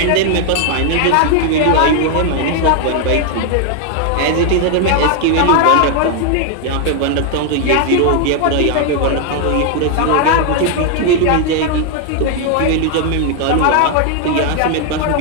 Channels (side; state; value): both; different; correlation 0.00